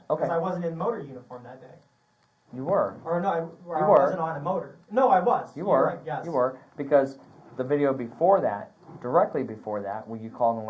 Okay. Because I wasn't in motor uniform that day. You were. Or no, I were. wasn't on a motor. No, I was. You You're were. right, yes. You were. Because the video before that, directly before that, when you called and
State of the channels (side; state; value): both; identical; correlation 1.00